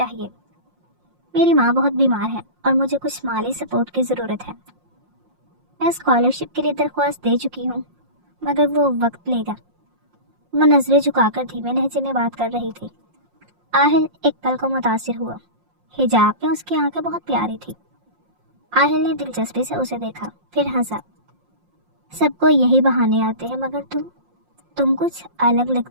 میری ماں بہت بیمار ہے اور مجھے کچھ مالی سپورٹ کی ضرورت ہے۔ میں اسکالرشپ کے لیے درخواست دے چکی ہوں، مگر وہ وقت لے گا۔ وہ نظریں جھکا کر دھیمے لہجے میں بات کر رہی تھی۔ آہل ایک پل کو متاثر ہوا۔ حجاب میں اس کی آنکھیں بہت پیاری تھی۔ آہل نے دلچسپی سے اسے دیکھا، پھر ہنسا۔ سب کو یہی بہانے آتے ہیں، مگر تم کچھ الگ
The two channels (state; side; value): late; left; 5.6 ms